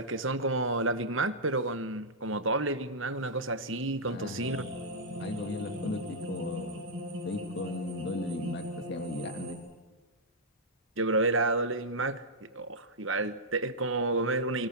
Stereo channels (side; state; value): both; normal; correlation -0.08